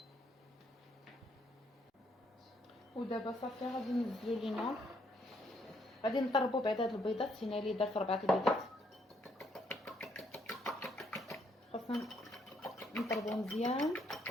ودابا صافي غادي ننزلو لينا، غادي نضربو بعد هاد البيضات. هنا اللي درت 4 البيضات، خاصنا نضربو مزيان.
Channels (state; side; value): normal; both; correlation 0.71